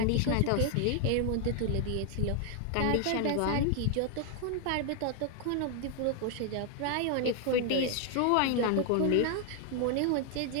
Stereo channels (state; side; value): different; both; correlation 0.00